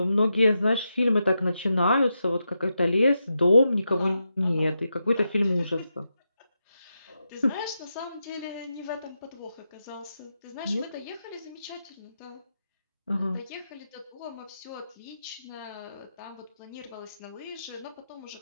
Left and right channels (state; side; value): inverted; both; correlation -0.87